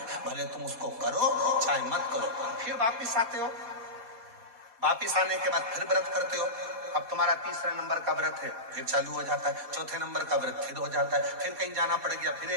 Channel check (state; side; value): late; left; 4.2 ms